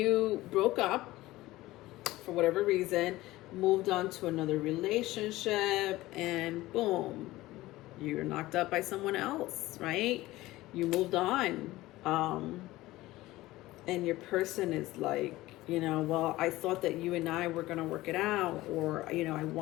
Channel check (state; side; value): quieter; right; 17.8 dB